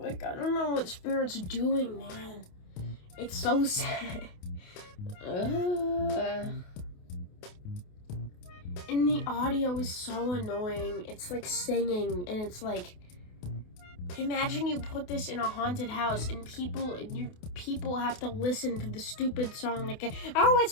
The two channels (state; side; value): late; right; 28 ms